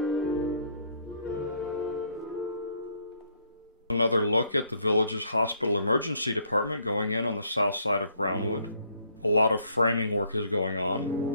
Another look at the village's hospital emergency department going in on the south side of Brownwood. A lot of framing work is going on.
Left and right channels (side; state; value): both; inverted; correlation -0.66